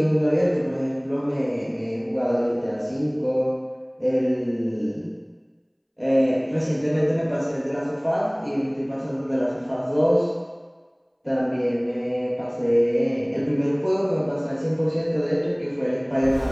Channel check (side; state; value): both; identical; correlation 1.00